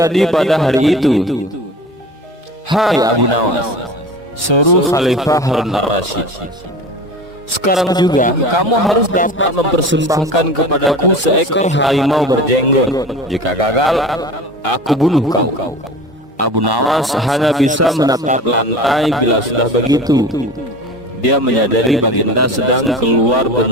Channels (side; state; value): both; normal; correlation 0.35